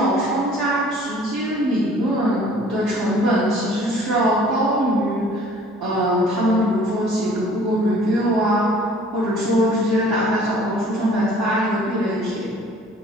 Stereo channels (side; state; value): both; normal; correlation 0.52